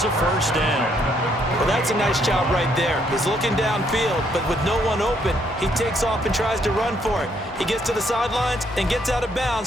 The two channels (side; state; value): both; normal; correlation 0.71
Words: a first down. Well, that's a nice job right there. He's looking downfield, but with no one open, he takes off and tries to run for it. He gets to the sidelines and gets out of